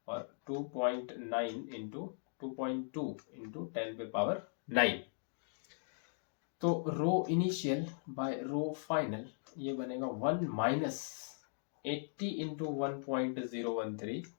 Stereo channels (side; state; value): right; silent; digital silence